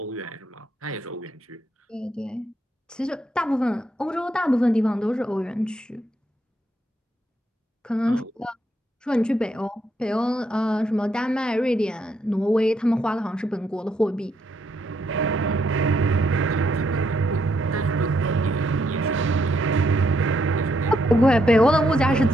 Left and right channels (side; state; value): both; normal; correlation 0.76